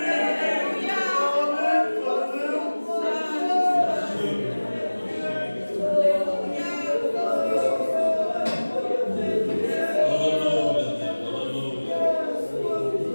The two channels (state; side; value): inverted; both; correlation -1.00